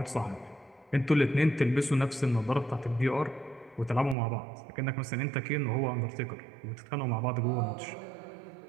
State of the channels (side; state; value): left; drops out; at 4.2 s